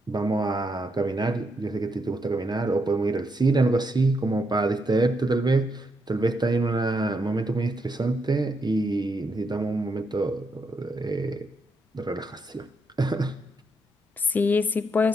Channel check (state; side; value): normal; both; correlation 0.79